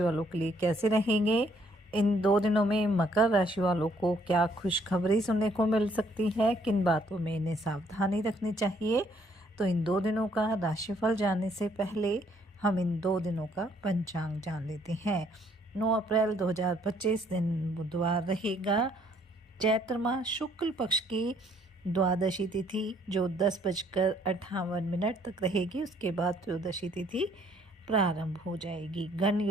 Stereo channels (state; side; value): normal; both; correlation 0.65